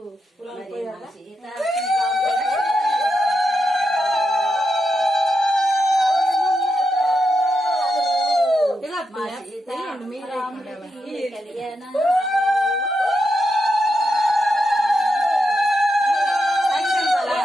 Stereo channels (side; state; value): both; normal; correlation 0.84